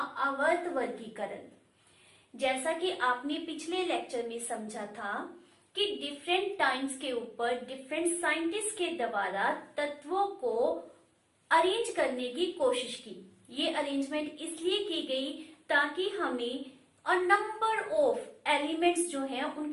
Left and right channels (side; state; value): both; identical; correlation 1.00